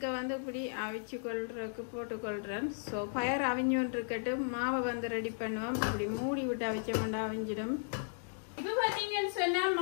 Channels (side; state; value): right; silent; digital silence